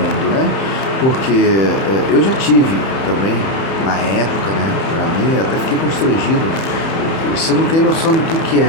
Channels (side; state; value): right; late; 31 ms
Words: né? Porque eu já tive também, na época, né? Pra mim, até fiquei constrangido. Você não tem noção do que é.